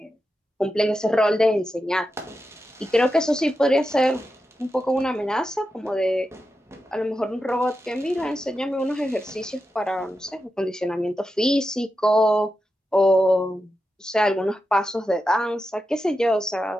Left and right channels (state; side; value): normal; both; correlation 0.89